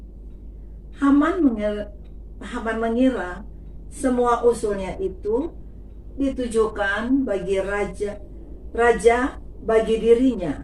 Haman mengira semua usulnya itu ditujukan bagi raja bagi dirinya.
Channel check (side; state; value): both; identical; correlation 1.00